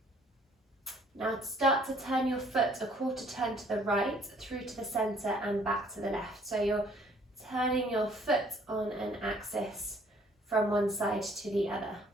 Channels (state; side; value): normal; both; correlation 0.60